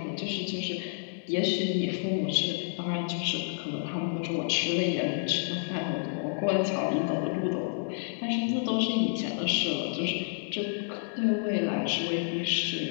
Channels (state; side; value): silent; right; 58 dB below the other